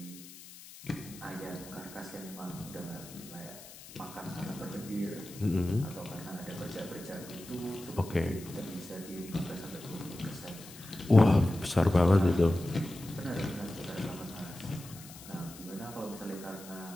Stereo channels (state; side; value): noise; left; hiss, 17 dB below the sound